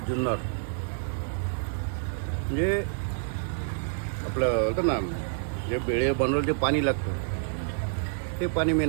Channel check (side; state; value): left; silent; digital silence